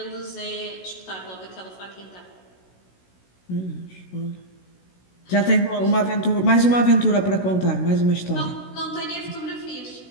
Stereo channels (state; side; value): late; right; 16 ms